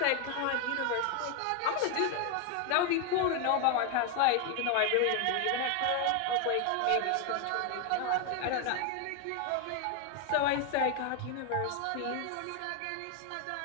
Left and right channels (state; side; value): different; both; correlation 0.01